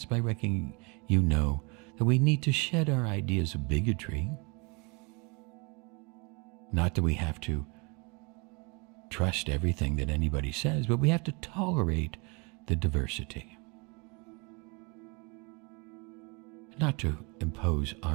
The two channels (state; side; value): quieter; left; 30.5 dB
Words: by reckoning you know that we need to shed our ideas of bigotry. Not that we have to trust everything that anybody says, but we have to tolerate the diversity. Not to impose